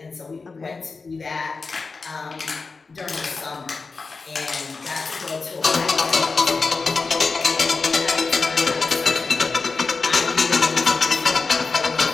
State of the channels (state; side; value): quieter; right; 4.3 dB